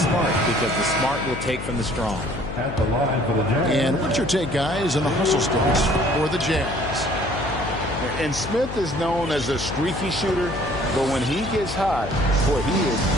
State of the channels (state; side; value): noise; left; hum, 8 dB below the sound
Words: Because the smart will take from the strong. At the line for the Jazz. And what's your take, guys, on the hustle sticks for the Jazz? And Smith is known as a streaky shooter, but when he gets hot, boy, he is